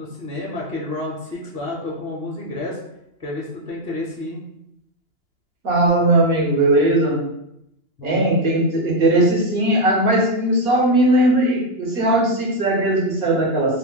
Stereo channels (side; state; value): left; late; 2.9 ms